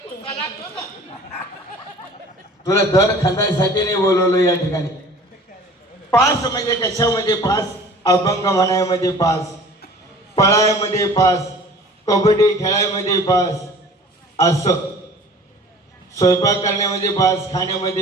कुस्सा लागतो ना तुला दर खांदायसाठी नाही बोलवलं या ठिकाणी पास म्हणजे कशामध्ये पास अभंग म्हणायमध्ये पास पळायमध्ये पास कबड्डी खेळायमध्ये पास असं स्वयंपाक करण्यामध्ये पास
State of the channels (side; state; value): both; normal; correlation 0.46